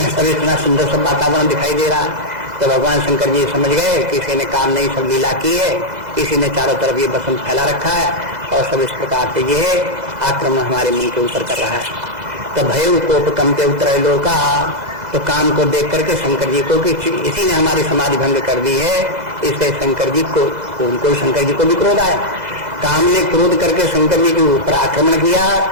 इतना सुंदर सब वातावरण दिखाई दे रहा है। तो भगवान शंकर जी समझ गए कि इसी ने काम नहीं सब लीला की है, इसी ने चारों तरफ ये बसंत फैला रखा है और सब इस प्रकार से ये आक्रमण हमारे मन के ऊपर कर रहा है। तो भय कोप कंपे उतरे लोका, तो काम को देख करके शंकर जी को कि इसी ने हमारी समाधि भंग कर दी है, इसलिए शंकर जी को उनको शंकर जी को भी क्रोध आया। काम ने क्रोध करके शंकर जी के ऊपर आक्रमण किया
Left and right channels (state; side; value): late; left; 2.0 ms